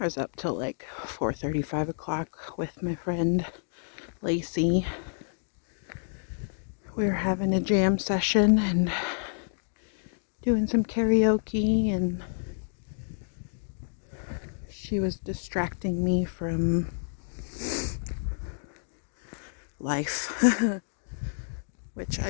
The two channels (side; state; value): right; silent; digital silence